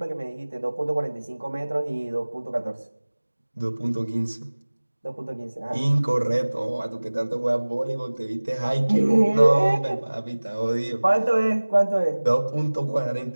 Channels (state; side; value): inverted; both; correlation -1.00